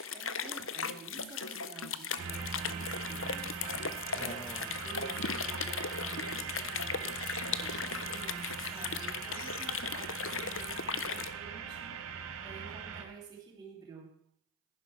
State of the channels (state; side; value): normal; both; correlation 0.01